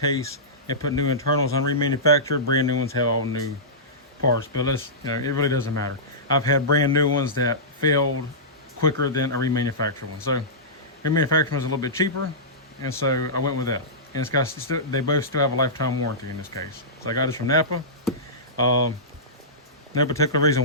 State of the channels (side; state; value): both; normal; correlation -0.17